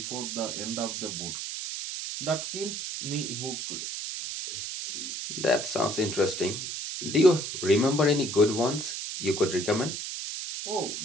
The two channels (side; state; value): right; noise; hiss, 5 dB below the sound